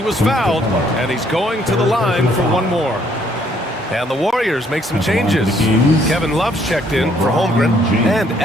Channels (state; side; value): normal; both; correlation 0.66